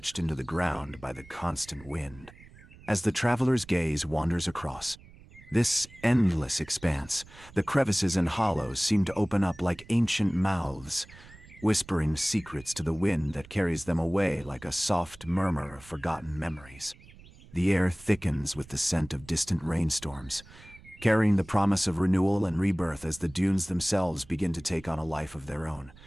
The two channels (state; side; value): noise; right; rumble, 21 dB below the sound